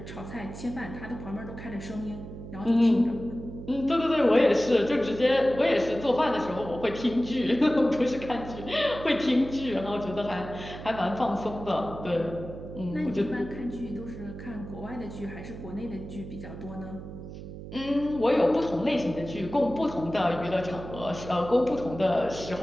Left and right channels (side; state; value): right; noise; hum, 11 dB below the sound